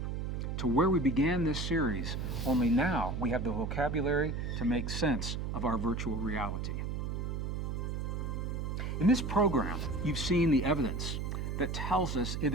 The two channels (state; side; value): noise; right; hum, 2 dB below the sound